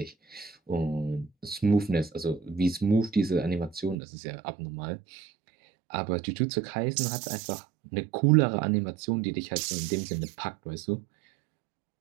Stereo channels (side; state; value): left; drops out; at 4.0 s